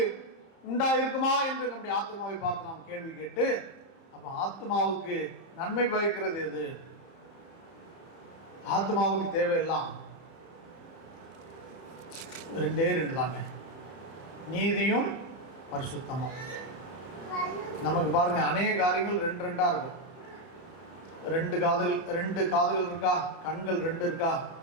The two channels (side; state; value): right; late; 30 ms